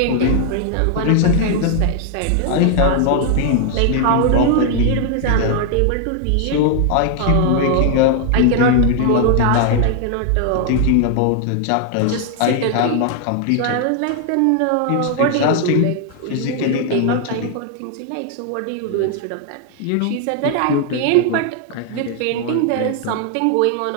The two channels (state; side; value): different; both; correlation 0.00